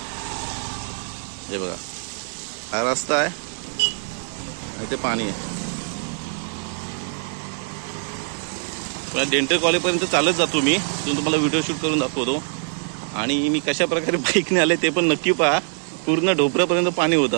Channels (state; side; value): silent; left; 60 dB below the other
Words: हे बघा हा रस्ता आहे आणि ते पाणी आहे. डेंटल कॉलेज पर्यंत चालत जातो मी, तुम्हाला व्हिडिओ शूट करून दाखवतो. आणि मी कशा प्रकारे बाईकने आले ते पण नक्की पहा. पूर्ण ढोपऱ्यापर्यंत पाणी